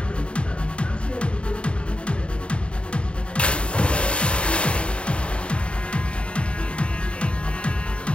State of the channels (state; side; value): late; right; 0.057 ms